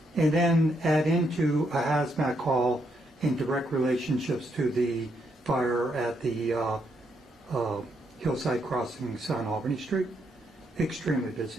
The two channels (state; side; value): normal; both; correlation 0.77